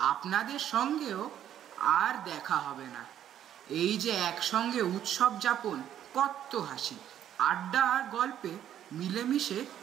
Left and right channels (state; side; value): quieter; left; 10.6 dB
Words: আপনাদের সঙ্গেও আর দেখা হবে না। এই যে একসঙ্গে উৎসব যাপন, কত হাসি, আড্ডা আর গল্পে মিলেমিশে